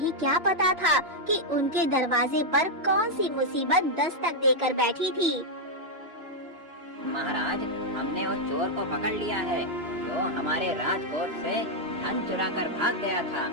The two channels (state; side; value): late; left; 2.9 ms